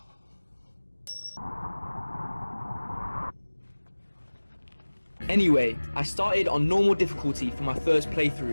Anyway, I started on normal difficulty for my first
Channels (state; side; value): inverted; both; correlation -1.00